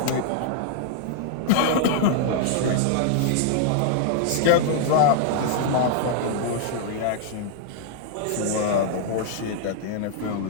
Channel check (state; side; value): different; both; correlation -0.01